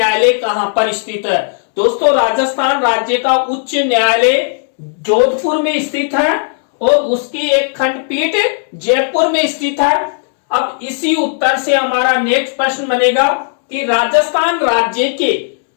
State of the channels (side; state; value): right; silent; 70 dB below the other